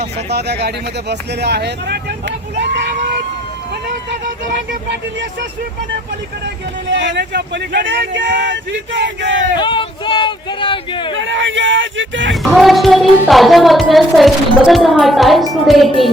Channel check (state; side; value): normal; both; correlation 0.63